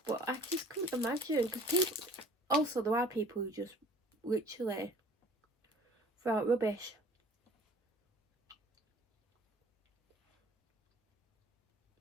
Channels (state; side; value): normal; both; correlation 0.50